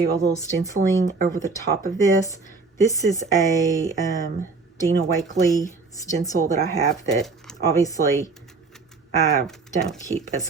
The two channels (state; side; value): quieter; left; 4.3 dB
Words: a little stenciling over the top of this. This is a Dina Wakley stencil that I have that obviously I don't keep as